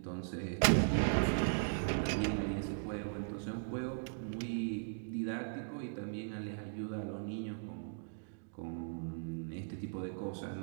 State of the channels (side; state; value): left; silent; digital silence